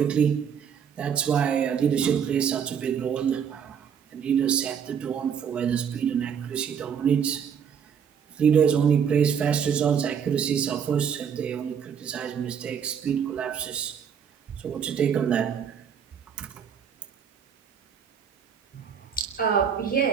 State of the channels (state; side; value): quieter; left; 7.6 dB